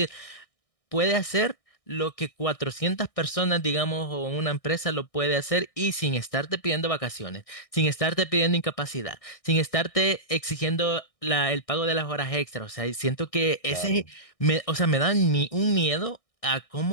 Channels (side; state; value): right; late; 1.6 ms